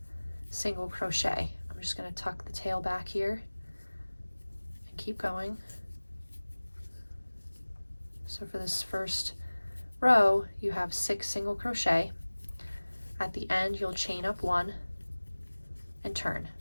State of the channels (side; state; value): both; inverted; correlation -1.00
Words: single crochet. I'm just going to tuck the tail back here and keep going. So for this first row, you have 6 single crochet. At the end, you'll chain up 1 and turn.